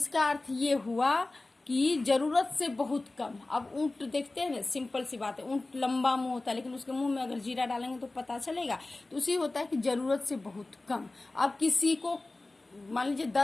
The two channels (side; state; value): right; quieter; 3.1 dB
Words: अर्थ ये हुआ कि जरूरत से बहुत कम। अब ऊंट देखते हैं ना, सिंपल सी बात है, ऊंट लंबा मुंह होता है लेकिन उसके मुंह में अगर जीरा डालेंगे तो पता चलेगा, तो उसी होता है कि जरूरत से बहुत कम। अब किसी को मान लीजिए